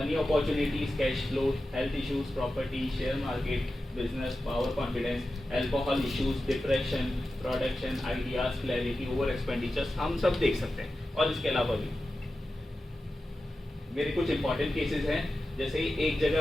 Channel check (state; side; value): normal; both; correlation 0.93